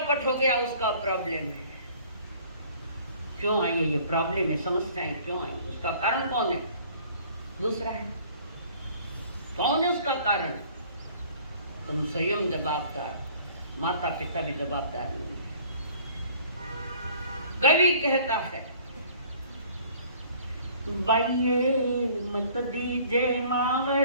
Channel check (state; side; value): inverted; both; correlation -0.53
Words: हो गया उसका प्रॉब्लम है। क्यों आई है ये प्रॉब्लम है, समस्याएं क्यों आई? उसका कारण कौन है? दूसरा है। कौन है उसका कारण? तुम स्वयं जवाबदार, माता पिता भी जवाबदार नहीं है। कवि कहता है बाइये मत दीजे